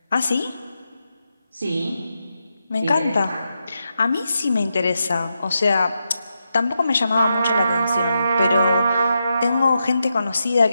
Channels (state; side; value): inverted; both; correlation -0.86